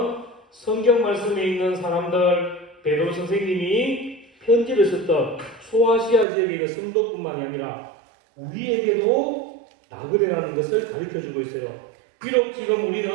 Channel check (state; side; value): drops out; left; at 6.2 s